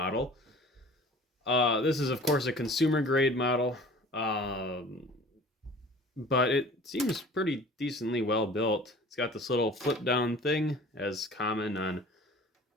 This is, of course, a consumer grade model, but it seems pretty decently well built. It's got this little flip down thing, as common on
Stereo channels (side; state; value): both; normal; correlation 0.45